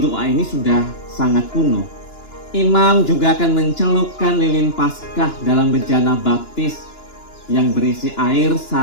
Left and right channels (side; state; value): right; late; 2.9 ms